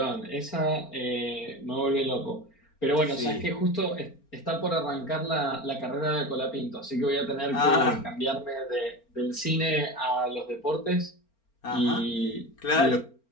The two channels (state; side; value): late; right; 4.4 ms